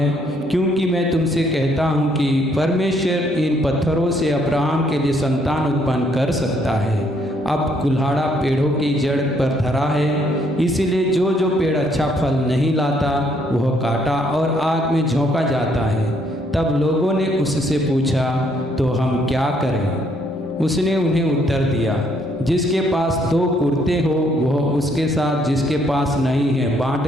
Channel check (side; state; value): both; normal; correlation 0.69